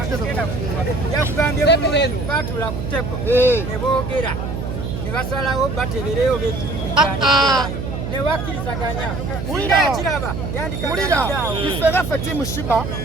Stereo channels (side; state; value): right; noise; hum, 5 dB below the sound